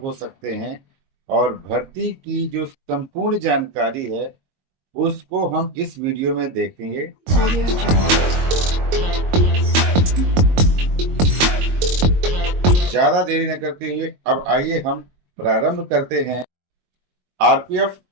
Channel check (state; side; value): late; left; 22 ms